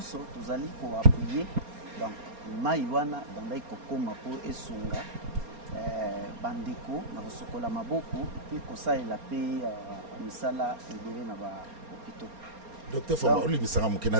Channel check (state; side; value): late; left; 4.3 ms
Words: tozali koappuye. Donc mai wana ebandaki kokoma mpo esunga bandeko na kosokola maboko mpe kosalela mpe misala ebele na bahôpitaux. Docteur Fwamba olibisaka moke